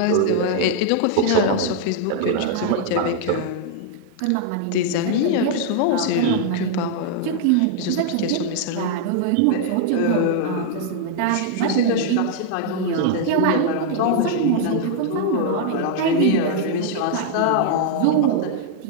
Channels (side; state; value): both; different; correlation -0.01